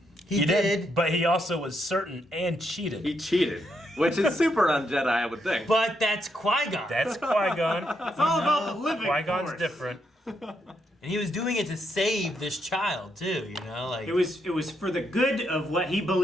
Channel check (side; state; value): both; normal; correlation 0.79